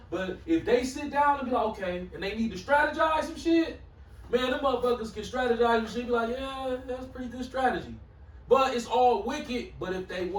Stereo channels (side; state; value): both; identical; correlation 1.00